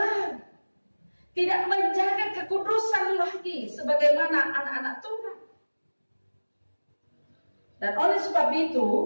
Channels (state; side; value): inverted; both; correlation -1.00